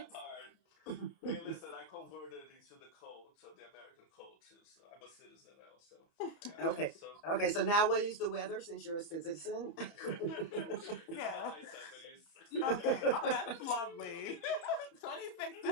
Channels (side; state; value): right; late; 30 ms